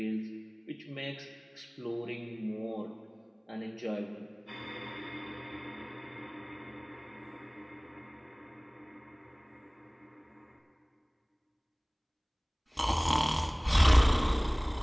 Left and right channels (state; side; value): identical; both; correlation 1.00